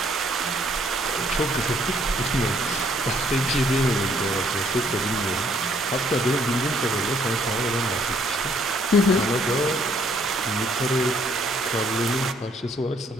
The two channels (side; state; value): both; normal; correlation 0.65